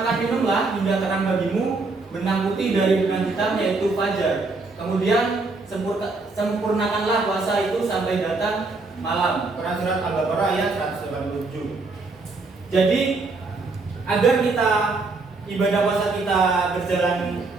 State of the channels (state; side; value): quieter; left; 3.7 dB